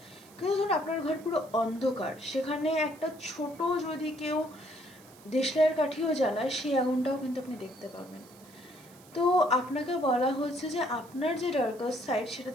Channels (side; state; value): right; noise; hiss, 24 dB below the sound